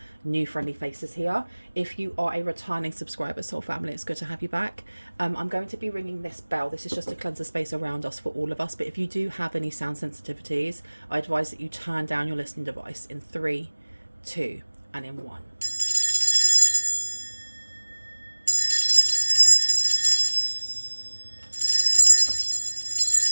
new friendly faces here. If you are a returning subscriber, soul family, it's good to have you back. I'm going to be ringing this bell. This is just to cleanse the space around us for all of us. But if you do have any sound sensitivities, I advise that you turn down your listening device in 3, 2, and in 1.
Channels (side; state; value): both; inverted; correlation -1.00